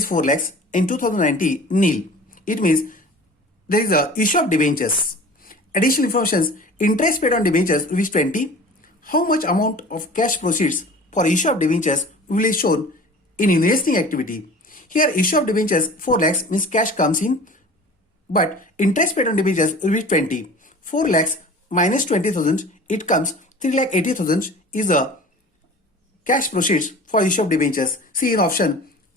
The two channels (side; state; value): both; normal; correlation 0.41